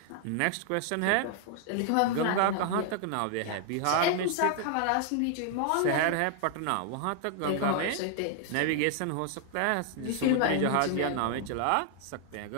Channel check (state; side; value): different; both; correlation 0.00